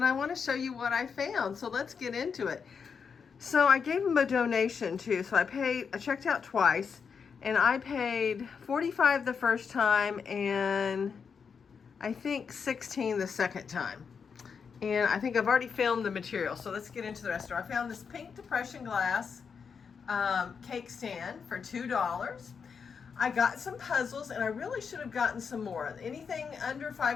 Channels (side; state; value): right; quieter; 6.1 dB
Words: I want to show you what I found, so let's get into it. So I gave them a donation too, so I checked out twice, and I paid $45 the first time and I think $16 the second time. And I think I've already filmed the material, so let's get into the rest of it. I found this pink depression glass cake stand for $2. I got some puzzles, and I really should have gotten some more. Anything under